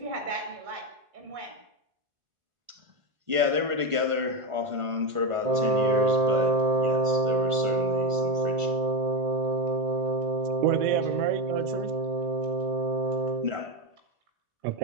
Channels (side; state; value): left; late; 1.5 ms